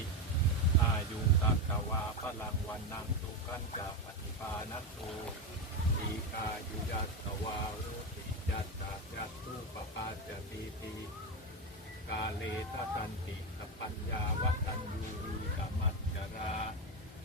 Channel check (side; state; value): both; normal; correlation 0.12